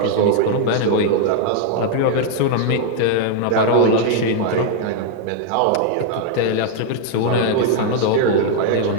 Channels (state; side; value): different; both; correlation 0.00